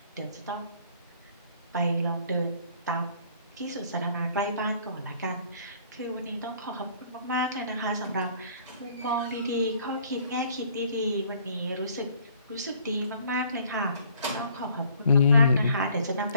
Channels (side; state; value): both; inverted; correlation -0.58